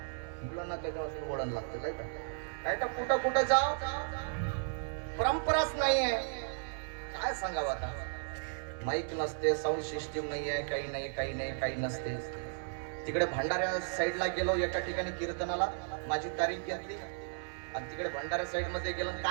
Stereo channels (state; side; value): silent; left; digital silence